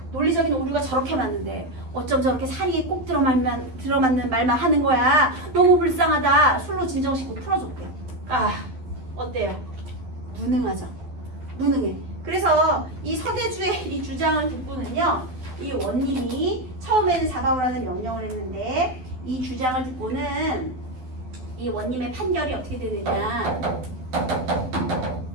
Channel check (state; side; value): late; left; 12 ms